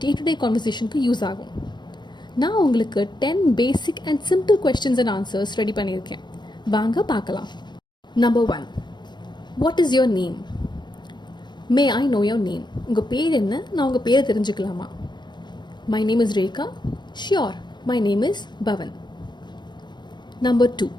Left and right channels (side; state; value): right; late; 0.22 ms